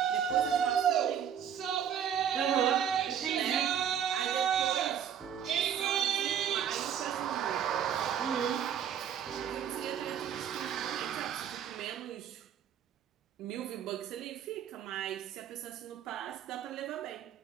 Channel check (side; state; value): left; quieter; 8.9 dB